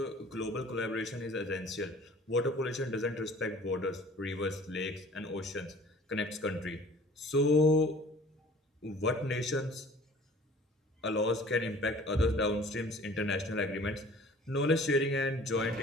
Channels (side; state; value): both; normal; correlation 0.49